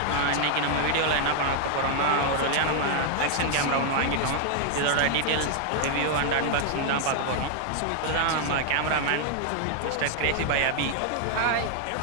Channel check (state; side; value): different; both; correlation 0.00